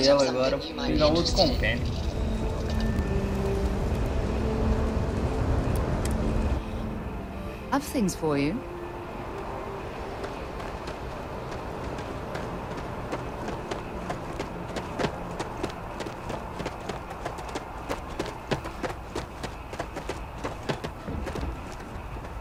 agora. Vou pegar outro compêndio. I've things for you.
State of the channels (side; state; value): both; identical; correlation 1.00